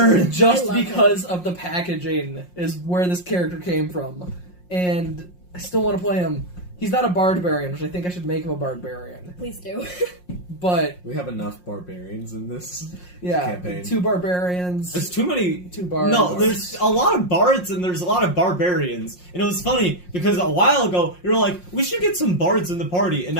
him. Just I love because of the packaging is where this character came from. And I still want to play him. He's not a barbarian, which I think I should make him a barbarian. Please do. But, We have enough barbarians in this yeah, campaign. 2 barbarians, There's too many. 2 bards. No, there's a lot of bards and there's a lot of barbarians. And it was funny because a while ago you were like, we should get some bards in the party. And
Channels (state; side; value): late; right; 5.6 ms